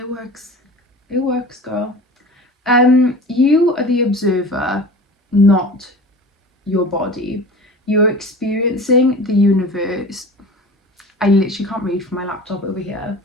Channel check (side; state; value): both; normal; correlation 0.37